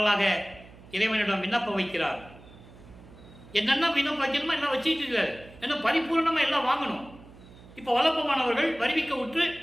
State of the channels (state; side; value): noise; right; hum, 21 dB below the sound